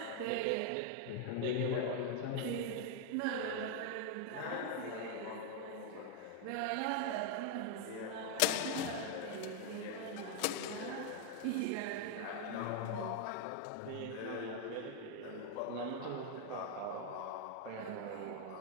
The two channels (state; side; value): different; both; correlation 0.00